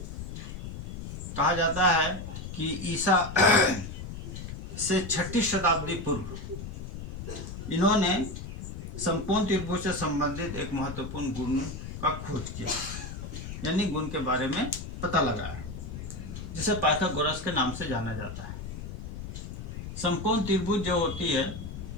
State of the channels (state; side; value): noise; left; rumble, 8 dB below the sound